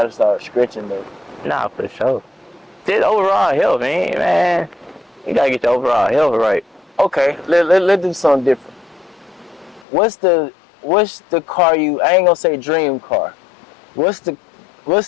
start stretching though. Nah, for sure. Just overall health, man. You gotta get your overall health right. Okay, let's do something different. What's the car you? I ain't gonna say dream car. What's the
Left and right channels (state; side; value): drops out; right; at 9.9 s